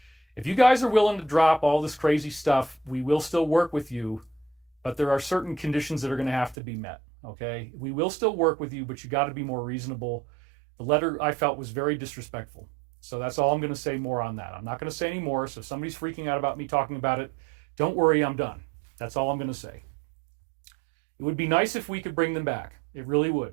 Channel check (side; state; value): left; drops out; at 6.6 s